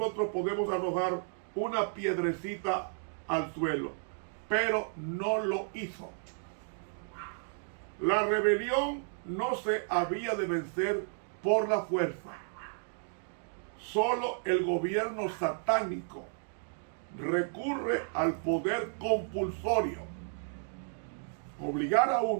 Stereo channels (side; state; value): left; silent; digital silence